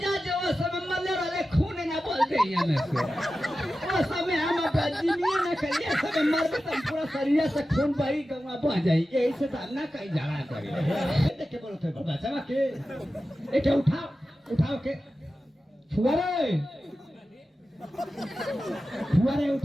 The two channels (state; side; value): normal; both; correlation 0.93